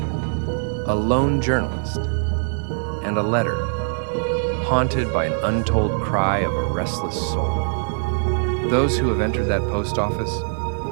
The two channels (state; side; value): silent; left; 64 dB below the other